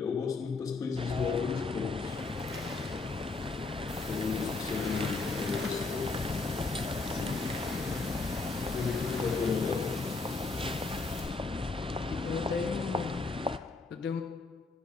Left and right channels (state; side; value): quieter; right; 3.8 dB